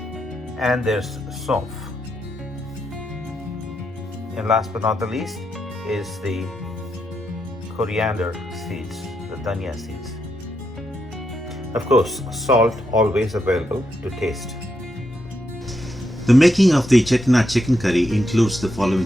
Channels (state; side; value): normal; both; correlation 0.82